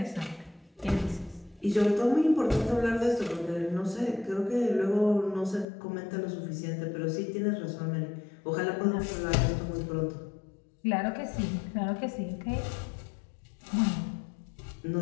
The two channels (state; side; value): drops out; right; at 5.7 s